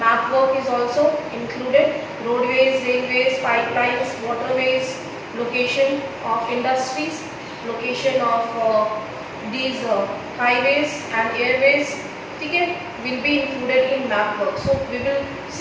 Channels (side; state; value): both; identical; correlation 1.00